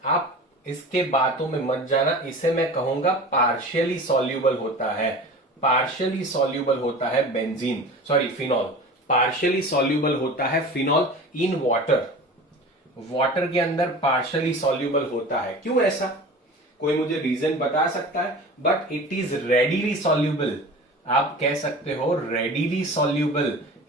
आप इसके बातों में मत जाना, इसे मैं कहूंगा पार्शियली सॉल्यूबल होता है। पार्शियली सॉल्यूबल होता है फिनॉल। पार्शियली सॉल्यूबल होता है फिनॉल इन वाटर। वाटर के अंदर पार्शियली सॉल्यूबल होता है। क्यों ऐसा? कोई मुझे रीजन बता सकता है? But it is readily soluble. आप कह सकते हो रेडिली सॉल्यूबल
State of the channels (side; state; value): both; normal; correlation 0.36